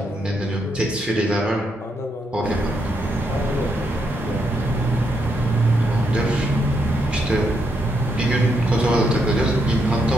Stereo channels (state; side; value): normal; both; correlation 0.79